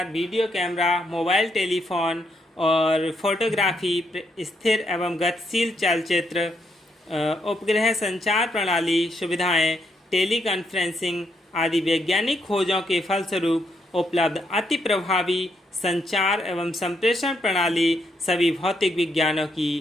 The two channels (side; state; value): both; normal; correlation 0.77